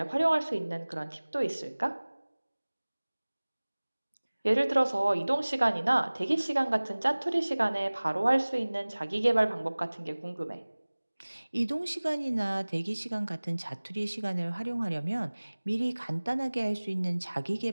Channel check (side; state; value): both; inverted; correlation -1.00